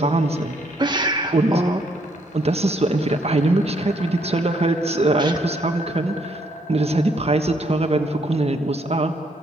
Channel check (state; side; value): normal; both; correlation 0.70